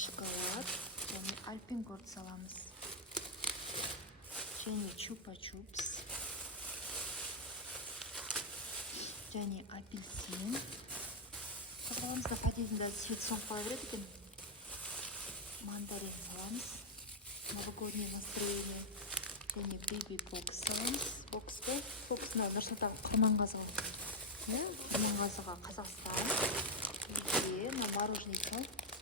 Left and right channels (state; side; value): normal; both; correlation 0.00